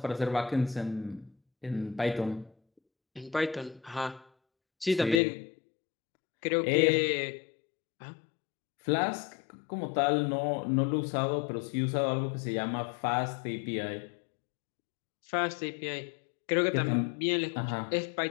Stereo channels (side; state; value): right; drops out; at 5.2 s